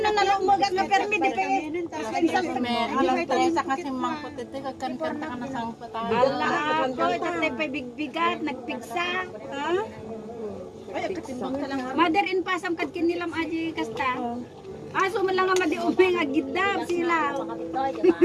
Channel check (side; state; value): both; identical; correlation 1.00